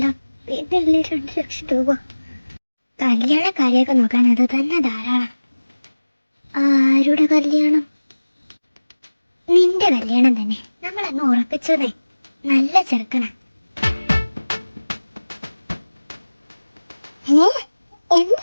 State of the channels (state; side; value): inverted; both; correlation -1.00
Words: പിന്നല്ലേ 2 ലക്ഷം രൂപ? കല്യാണ കാര്യമൊക്കെ നോക്കാൻ അത് തന്നെ ധാരാളം. ആരുടെ കല്യാണം? നിന്റെ കല്യാണം തന്നെ. നമ്മളങ്ങ് ഉറപ്പിച്ചതേ. നല്ല ചെറുക്കനാ.